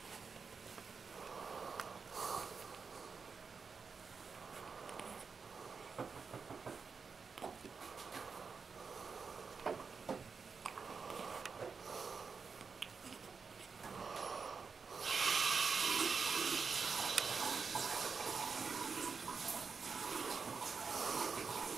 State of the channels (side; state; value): left; quieter; 5.3 dB